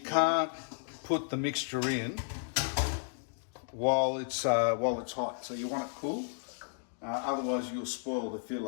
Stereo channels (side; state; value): right; silent; digital silence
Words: put the mixture in while it's hot. So you want it cool. Otherwise, you'll spoil the